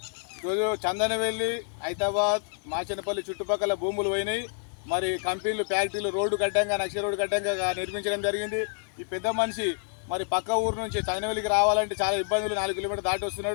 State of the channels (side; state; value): right; silent; 58 dB below the other